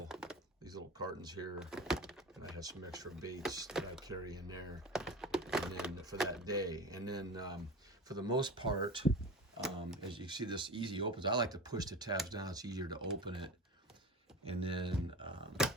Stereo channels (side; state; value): both; normal; correlation 0.32